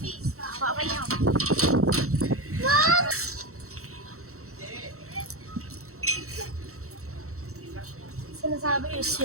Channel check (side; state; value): left; late; 0.64 ms